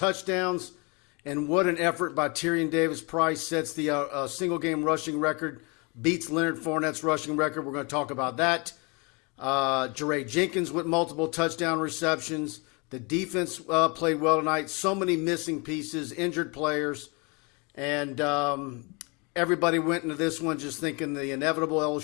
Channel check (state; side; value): quieter; right; 30.5 dB